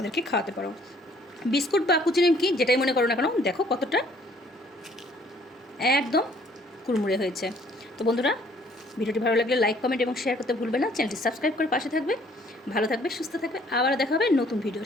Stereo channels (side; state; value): both; normal; correlation 0.60